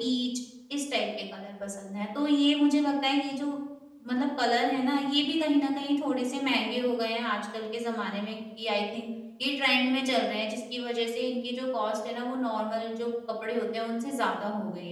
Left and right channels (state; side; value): identical; both; correlation 1.00